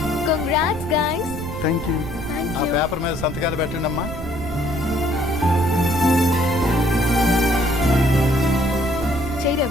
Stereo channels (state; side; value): noise; right; rumble, 10 dB below the sound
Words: Congrats guys. Thank you. ఆ పేపర్ మీద సంతకాలు పెట్టండి అమ్మా. చెయ్